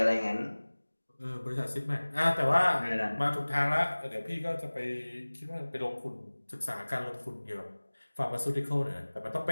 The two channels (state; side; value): inverted; both; correlation -1.00